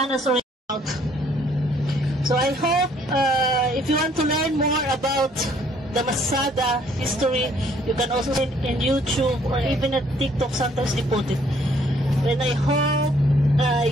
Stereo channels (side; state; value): both; normal; correlation 0.63